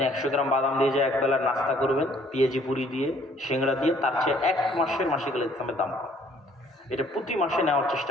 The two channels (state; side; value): normal; both; correlation 0.60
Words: 100 গ্রাম বাদাম দিয়ে যে একবেলার নাস্তা করবেন পেঁয়াজি পুরি দিয়ে, সিংড়া দিয়ে, তার চেয়ে 1 মাসের মাসিকা লিখতেছামের দাম কম। এটা প্রতি মাসে নেওয়ার